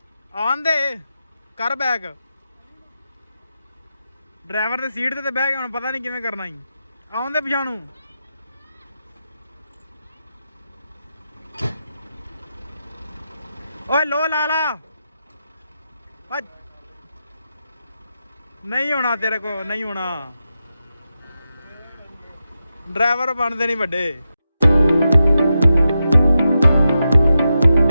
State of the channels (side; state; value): both; inverted; correlation -0.89